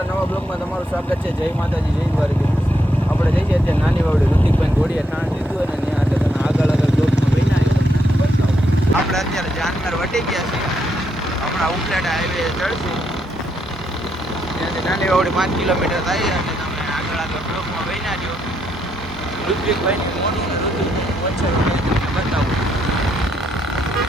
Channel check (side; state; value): both; normal; correlation 0.77